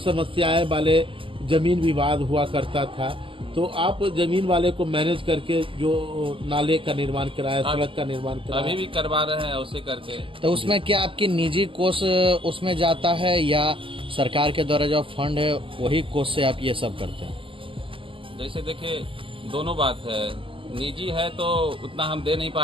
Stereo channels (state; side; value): late; left; 0.25 ms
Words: समस्याएं वाले जमीन विवाद हुआ करता था, तो आप जमीन वाले को मैनेज करके जो नाले का निर्माण कराया, सड़क का निर्माण कराया, अभी भी करवा रहे हैं उसे करके। तो उसमें क्या आपकी निजी कोष उसमें जाता है, या सरकार के द्वारा जो फंड है वही कोष से आप ये सब करते हैं? जैसे देखिए, दोनों बात है। निजी है तो उतना हम दे नहीं